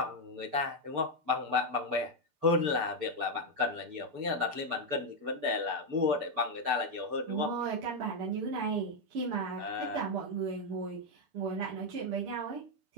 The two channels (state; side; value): late; left; 6.8 ms